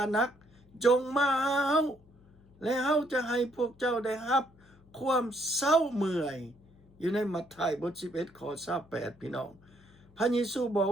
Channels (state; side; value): noise; left; hum, 28 dB below the sound